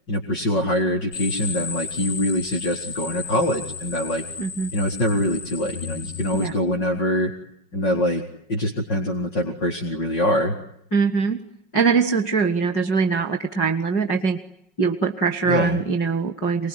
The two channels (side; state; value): right; late; 5.4 ms